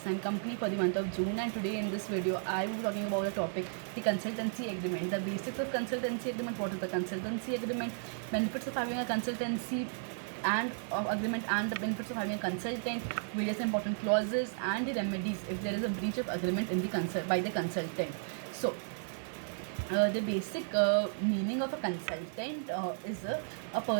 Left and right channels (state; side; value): silent; left; digital silence